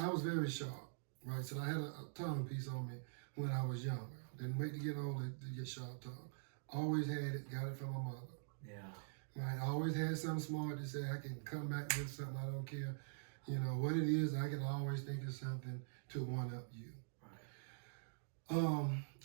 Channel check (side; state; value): left; silent; digital silence